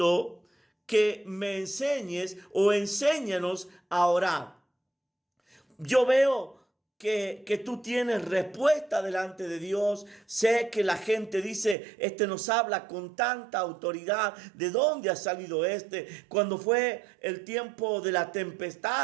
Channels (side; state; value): left; drops out; at 11.8 s